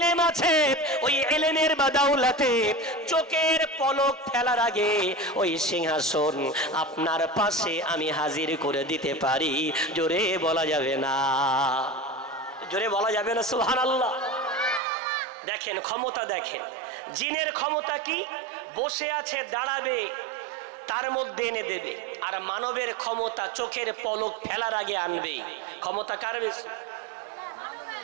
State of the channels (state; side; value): drops out; left; at 14.8 s